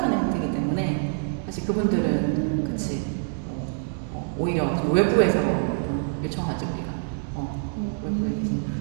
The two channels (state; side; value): silent; left; digital silence